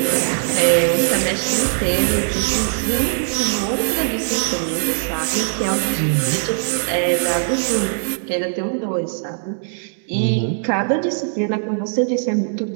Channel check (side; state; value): left; silent; digital silence